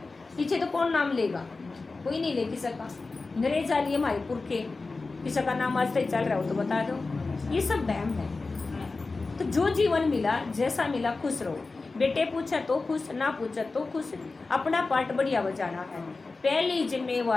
पीछे तो कौन नाम लेगा, कोई नहीं ले किसी का। अंग्रेज आ लिए हमारे पुरखे, किसी का नाम आज तक चल रहा हो तो बता दो। ये सब वहम है। तो जो जीवन मिला, जैसा मिला, खुश रहो। बेटे पूछा तो खुश, ना पूछा तो खुश, अपना पार्ट बढ़िया बजाना है। पहली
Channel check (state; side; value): quieter; right; 3.7 dB